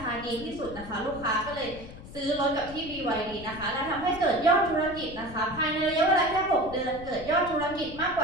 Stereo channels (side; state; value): left; noise; rumble, 15 dB below the sound